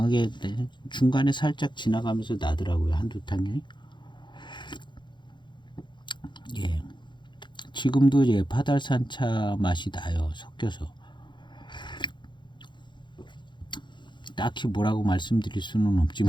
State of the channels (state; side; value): late; right; 0.22 ms